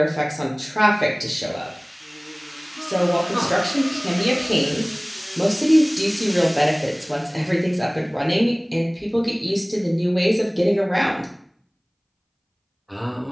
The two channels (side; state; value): both; identical; correlation 1.00